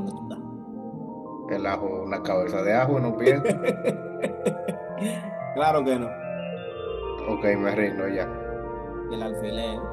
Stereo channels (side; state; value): both; identical; correlation 1.00